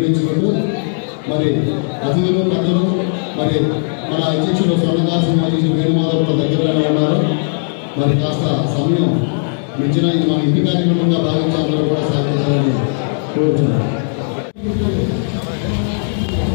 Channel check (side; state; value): right; silent; digital silence